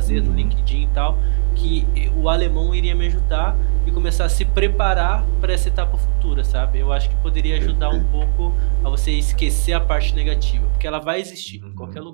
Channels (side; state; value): left; silent; digital silence